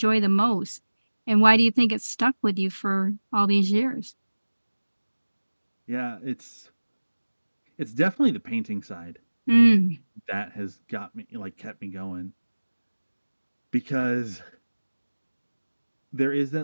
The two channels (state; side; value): inverted; both; correlation -1.00